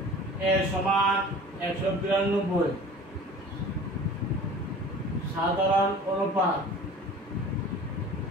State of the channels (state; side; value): normal; both; correlation 0.43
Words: a সমান 192, সাধারণ অনুপাত